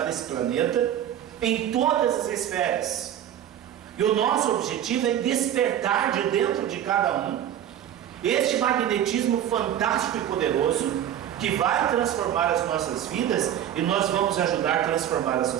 esse planeta em todas as esferas. E o nosso objetivo é despertar de dentro de cada um este magnetismo fantástico e poderoso que vai transformar as nossas vidas, e nós vamos ajudar a transformar a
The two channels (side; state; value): left; quieter; 10.8 dB